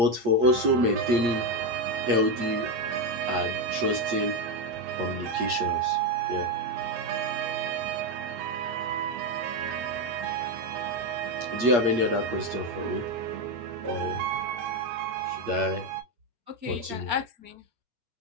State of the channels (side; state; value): left; late; 8.5 ms